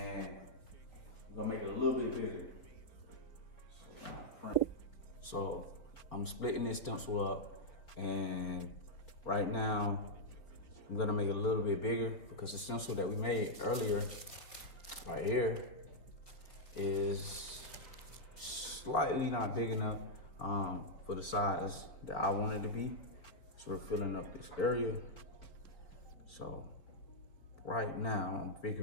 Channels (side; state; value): right; late; 4.6 ms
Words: I'm gonna make it a little bit bigger. So I'm splitting this stencil up, and right now I'm gonna make it a little bit bigger because the stencil that we made earlier, right here, is slightly not big enough for the size that I want it to be. So we're filling up this area. So right now I'm